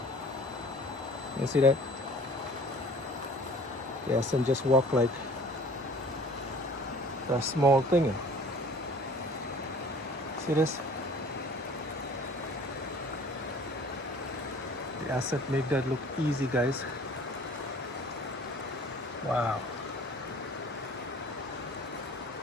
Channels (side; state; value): both; normal; correlation 0.49